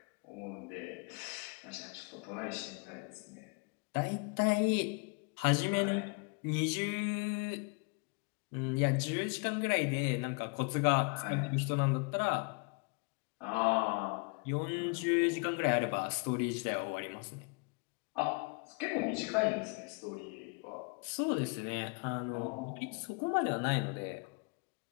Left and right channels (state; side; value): quieter; right; 32.7 dB